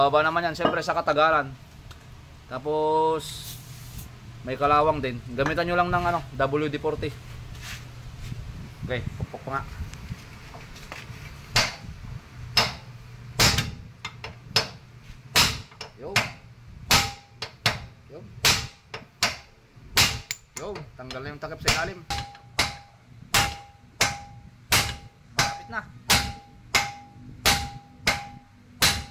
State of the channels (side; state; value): both; identical; correlation 1.00